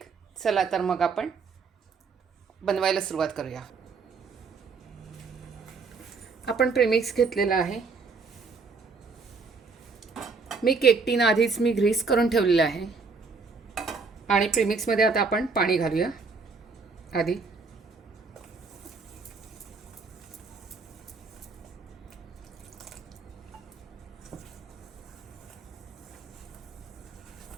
चला तर मग आपण बनवायला सुरुवात करूया. आपण प्रेमिक्स घेतलेला आहे. मी केक टीन आधीच ग्रीस करून ठेवलेलं आहे. आणि प्रेमिक्समध्ये आता आपण पाणी घालूया. आधी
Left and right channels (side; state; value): left; quieter; 4.6 dB